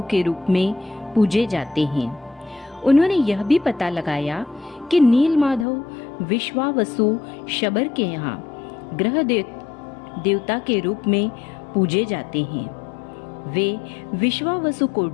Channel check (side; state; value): right; drops out; at 5.7 s